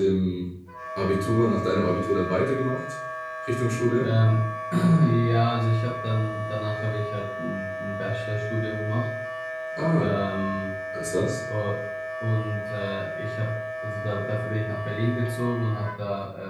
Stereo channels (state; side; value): identical; both; correlation 1.00